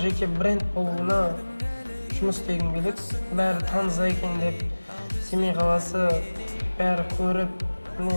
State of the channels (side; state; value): both; inverted; correlation -1.00